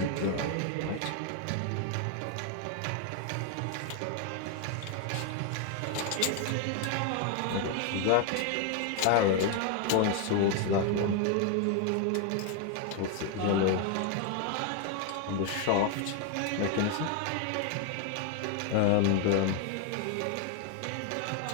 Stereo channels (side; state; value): both; different; correlation 0.01